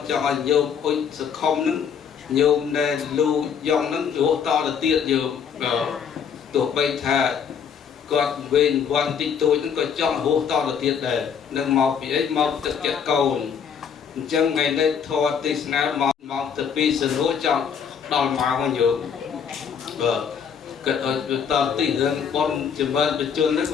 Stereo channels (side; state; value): right; quieter; 7.2 dB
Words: ចង់ឲ្យញោមអុជសខុមនឹងញោមដែលលូយ៉ងនឹងរស់តទៅទៀតញោមទោះបីថាគាត់វេនវ័នតិចតួចហ្នឹងក៏ចង់រស់តទៅទៀតដែរនឹងមកពីអីមកទឹកចិត្តកូនអញ្ចឹងថ្ងៃនេះធម៌ទេសនាមកទៅពីសនុចង់ដល់មកវិញយោបាទគិតឲ្យតទីរឿងបនចម្រើនបញ្ជននេះ